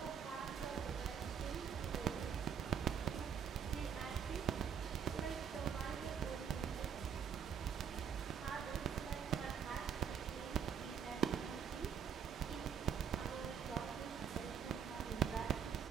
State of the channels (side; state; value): left; quieter; 7.6 dB